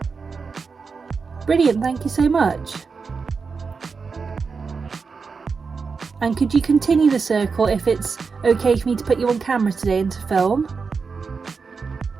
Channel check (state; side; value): quieter; left; 5.0 dB